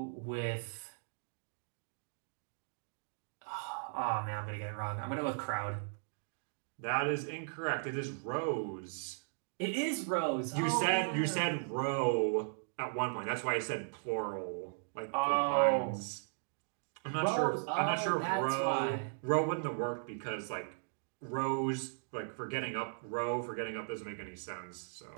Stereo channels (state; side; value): silent; left; digital silence